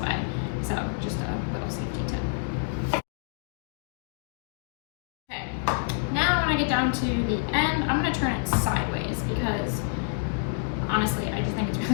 So just a little safety tip. Okay, now when I get down to the end, I'm gonna turn it sideways because honestly, I just think it's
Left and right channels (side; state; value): right; silent; digital silence